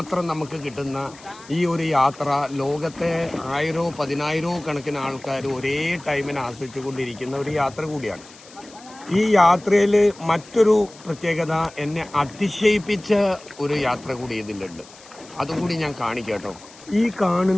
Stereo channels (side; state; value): left; noise; hiss, 22 dB below the sound